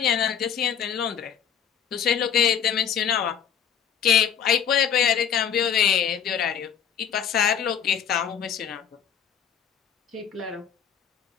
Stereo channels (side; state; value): right; quieter; 8.3 dB